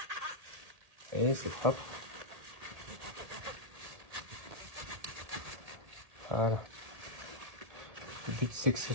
Et c'est propre. Voilà. Le but c'est que ce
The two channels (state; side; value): late; left; 1.8 ms